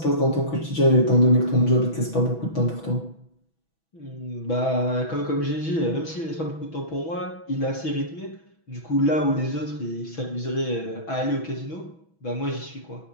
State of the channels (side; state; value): right; late; 6.1 ms